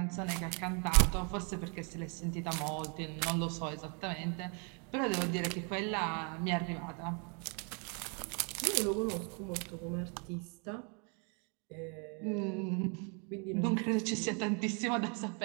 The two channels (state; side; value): quieter; left; 36.6 dB